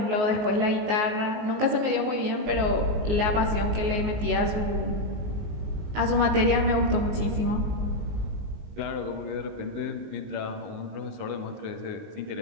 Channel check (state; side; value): late; left; 19 ms